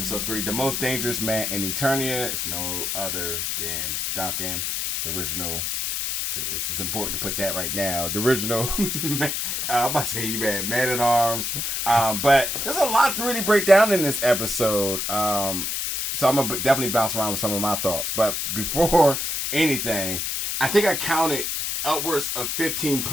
3, the most dangerous man in Eternia is no other than Duncan, the original. It's important to put that right now. The original, I'm about to say you man at arms. But there's a lot to really break down in this episode. So I'm going to definitely bounce around with some of my thoughts. But before anything, I think I counted upwards of 15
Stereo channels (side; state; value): left; noise; hiss, 1 dB below the sound